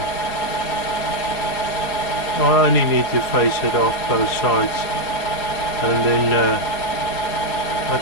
I only need to face it off both sides, and then I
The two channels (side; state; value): right; late; 4.9 ms